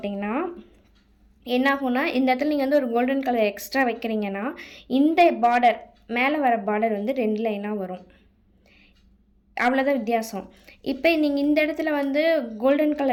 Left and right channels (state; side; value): identical; both; correlation 1.00